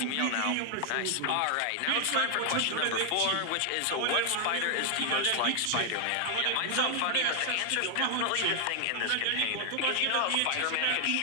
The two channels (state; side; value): different; both; correlation 0.00